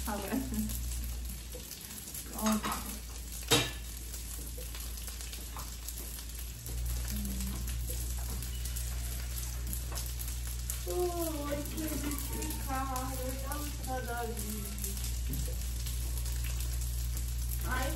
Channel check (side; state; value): both; identical; correlation 1.00